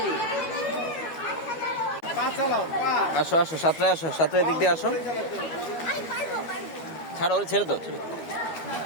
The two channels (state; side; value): late; right; 12 ms